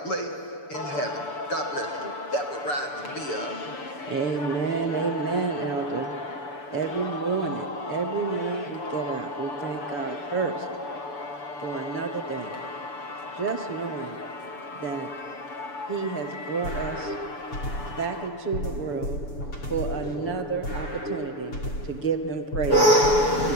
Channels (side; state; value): right; late; 6.9 ms